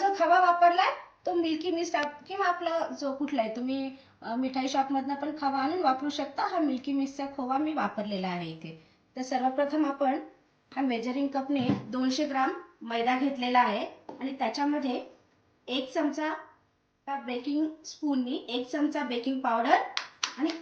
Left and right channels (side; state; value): both; identical; correlation 1.00